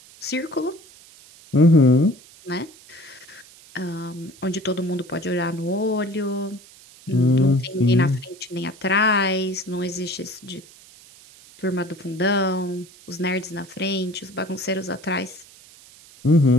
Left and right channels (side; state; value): right; noise; hiss, 23 dB below the sound